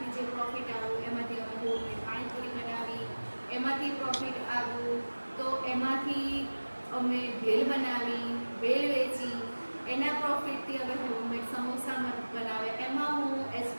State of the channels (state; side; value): inverted; both; correlation -1.00